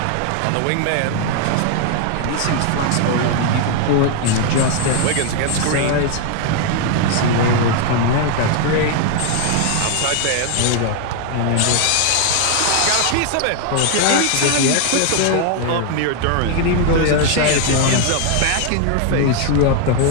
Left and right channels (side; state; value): both; different; correlation 0.00